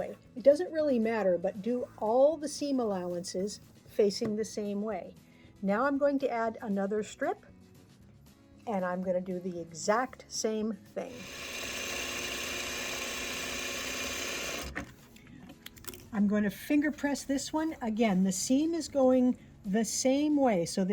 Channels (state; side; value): identical; both; correlation 1.00